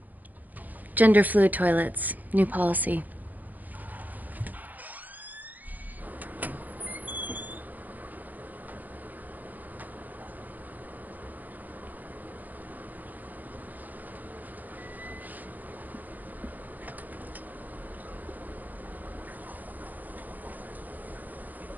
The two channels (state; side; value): late; left; 0.083 ms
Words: Gender fluid toilets, new policy.